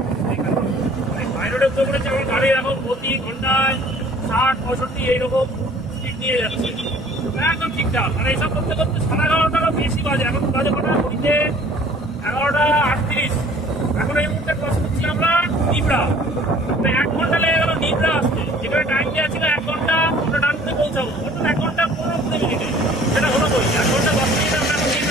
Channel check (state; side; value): normal; both; correlation 0.52